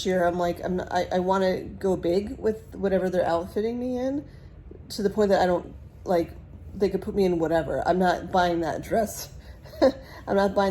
year I'm like, I want to go big with whatever they're outfitting me in, to the point that I don't, like, they could put me in whatever. I'm not buying that dress. I'm not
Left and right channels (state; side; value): identical; both; correlation 1.00